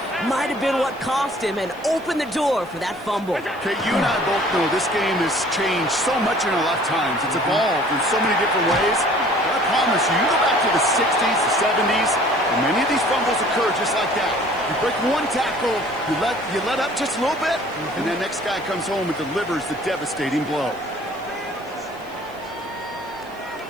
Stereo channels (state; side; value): noise; right; hiss, 27 dB below the sound